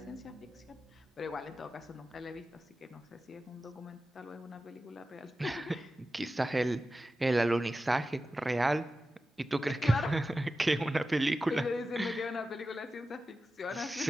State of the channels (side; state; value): both; normal; correlation 0.93